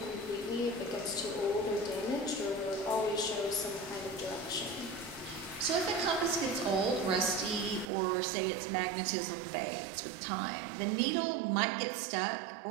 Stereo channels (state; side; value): drops out; left; at 7.9 s